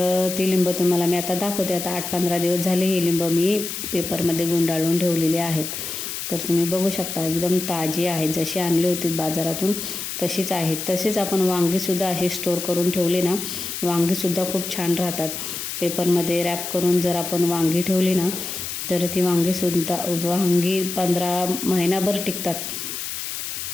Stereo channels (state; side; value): noise; left; hiss, 6 dB below the sound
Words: ती लिंब तुम्हाला मी आता दाखवते. आता 8-15 दिवस झाले ही लिंब मी पेपरमध्ये गुंडाळून ठेवलेली आहेत. तर तुम्ही बघू शकता एकदम ताजी आहेत, जशी आणली होती बाजारातून तशीच आहेत. तसेच आपण वांगीसुद्धा अशी स्टोअर करून ठेवली ना, वांगीसुद्धा खूप छान राहतात. पेपरमध्ये रॅप करून जर आपण वांगी ठेवली ना, तर ती वांगी 15 महिनाभर टिकतात.